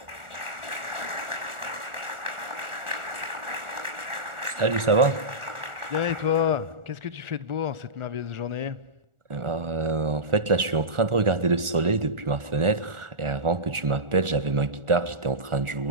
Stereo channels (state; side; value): late; left; 1.4 ms